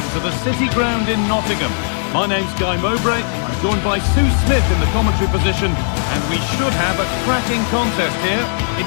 to the City Ground in Nottingham. My name's Guy Mowbray. I'm joined by Sue Smith in the commentary position, and we should have a cracking contest here.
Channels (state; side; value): silent; right; 68 dB below the other